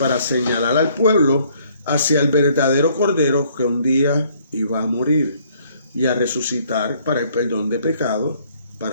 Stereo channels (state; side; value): inverted; both; correlation -0.64